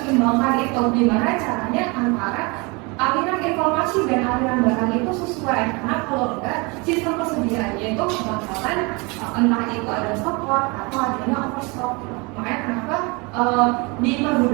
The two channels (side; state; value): left; quieter; 28.2 dB